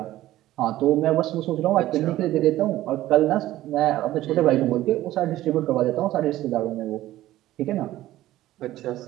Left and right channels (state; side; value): quieter; left; 15.0 dB